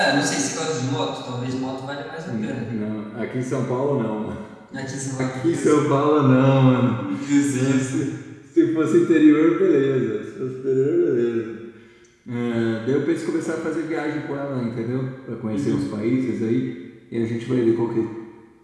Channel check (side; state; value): both; identical; correlation 1.00